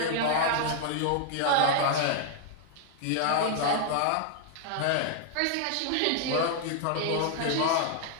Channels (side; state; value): both; different; correlation 0.00